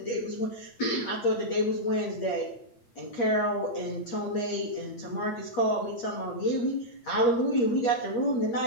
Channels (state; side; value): late; right; 8.5 ms